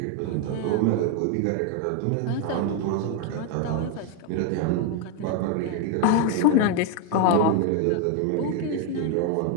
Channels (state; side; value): different; both; correlation 0.01